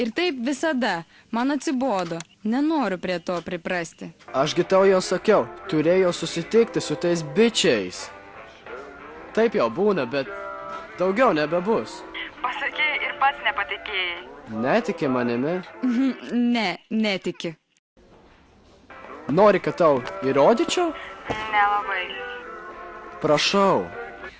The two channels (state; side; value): identical; both; correlation 1.00